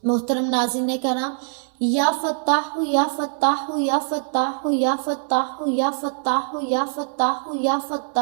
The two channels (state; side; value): silent; left; 61 dB below the other